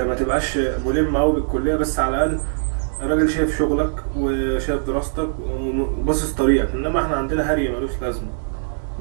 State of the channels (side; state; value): left; silent; 65 dB below the other